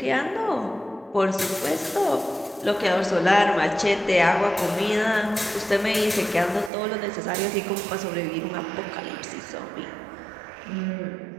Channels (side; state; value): left; drops out; at 6.7 s